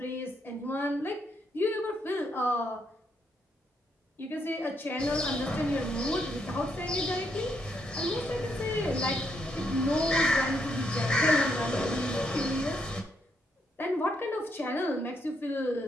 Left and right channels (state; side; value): normal; both; correlation 0.76